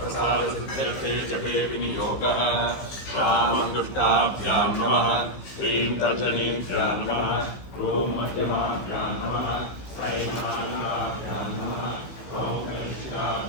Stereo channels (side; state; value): right; late; 15 ms